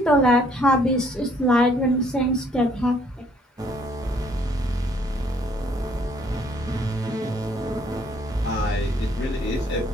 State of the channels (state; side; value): normal; both; correlation 0.64